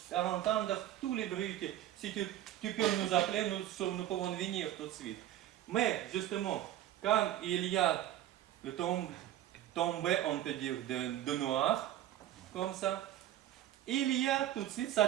entendre tous les bruits. Si tu peux nous appeler, nous pouvons venir tout de suite. Mais justement, quand il y a le tombé, on peut dire, de noir, comme ça, il y a tout de suite, ça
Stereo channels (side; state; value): left; quieter; 12.7 dB